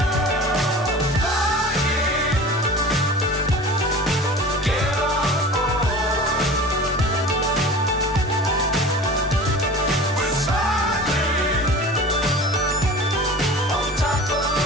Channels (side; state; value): both; normal; correlation 0.38